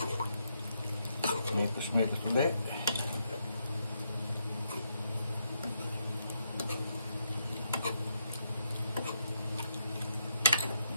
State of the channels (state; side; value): inverted; both; correlation -0.78